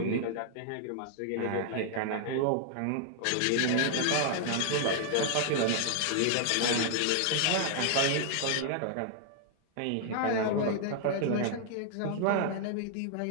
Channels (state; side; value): different; both; correlation -0.01